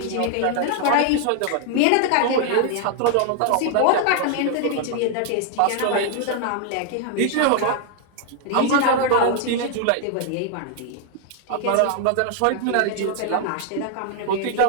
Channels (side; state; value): both; different; correlation 0.00